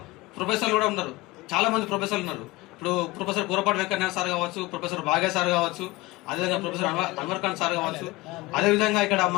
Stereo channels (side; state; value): right; quieter; 20.7 dB